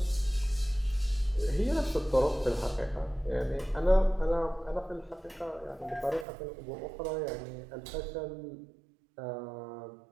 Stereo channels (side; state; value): left; drops out; at 6.2 s